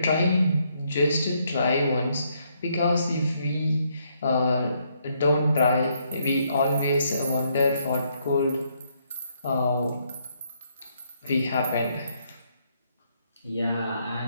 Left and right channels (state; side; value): inverted; both; correlation -0.73